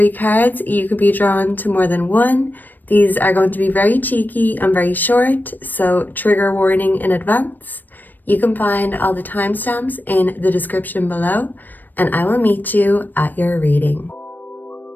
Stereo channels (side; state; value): right; late; 0.089 ms